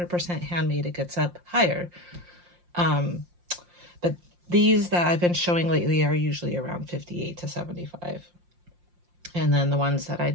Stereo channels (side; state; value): left; late; 5.7 ms